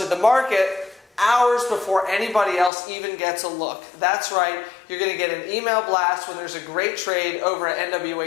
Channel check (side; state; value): right; drops out; at 2.7 s